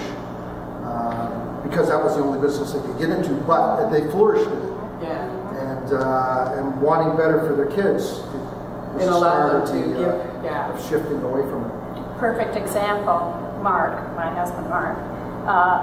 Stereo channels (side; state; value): both; identical; correlation 1.00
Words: because that was the only business they could get into, but they flourished in it. Yeah. And wanting better for their kids. It allowed them to give, of shifting away from it. Perfect example, Mark, my husband Mark,